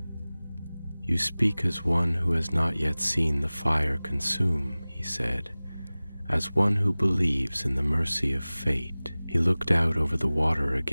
"You speak as one who has not yet seen the fire consume," he said, "as one who believes in the mercy of fate." He looked out over the water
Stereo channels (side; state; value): both; inverted; correlation -0.99